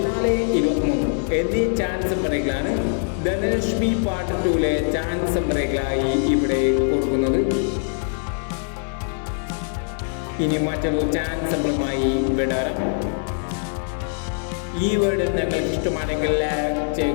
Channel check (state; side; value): silent; right; 64 dB below the other